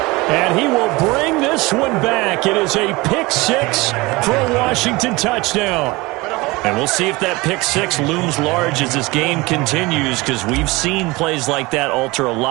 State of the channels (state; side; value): quieter; left; 22.8 dB